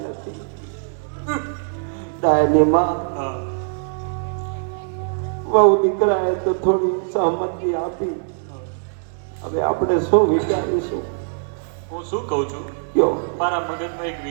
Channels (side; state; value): left; silent; digital silence